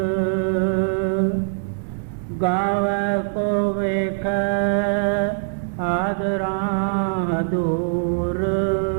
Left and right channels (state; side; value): silent; left; digital silence